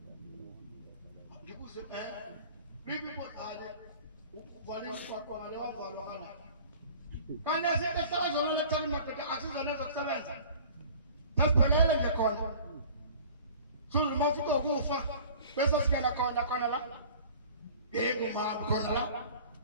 ngibuze bibi kodale uvale umshwaqwa ngale wavalwa kana kana sithe sazolo lethani madoda asizona zokusebenza tasiphelele nje khona sulu mafika ukufa bese singena khona la nginguma khona la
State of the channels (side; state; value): both; inverted; correlation -0.46